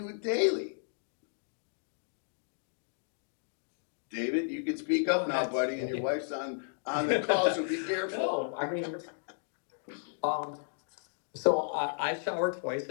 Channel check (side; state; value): right; silent; digital silence